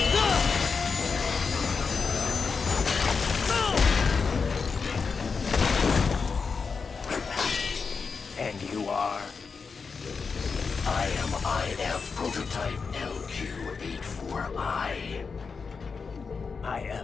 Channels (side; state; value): right; quieter; 5.2 dB